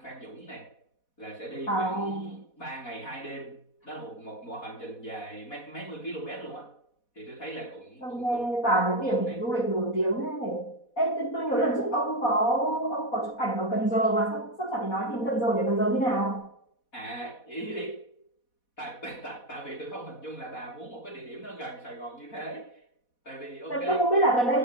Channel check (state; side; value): late; right; 4.1 ms